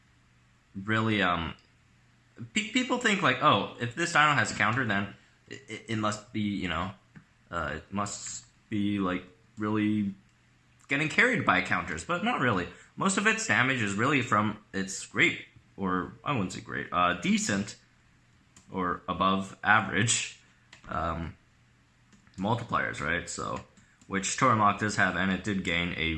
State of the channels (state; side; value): identical; both; correlation 1.00